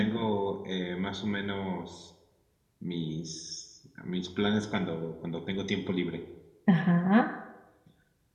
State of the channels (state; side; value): identical; both; correlation 1.00